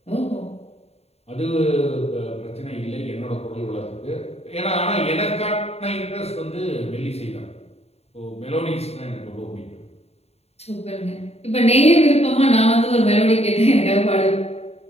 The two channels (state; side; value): late; right; 0.30 ms